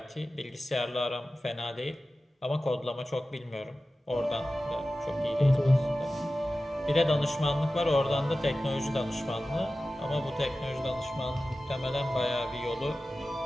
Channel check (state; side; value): normal; both; correlation 0.95